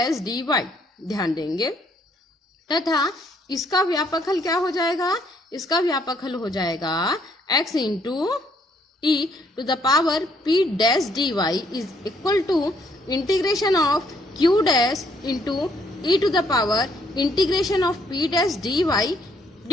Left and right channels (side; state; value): both; normal; correlation 0.68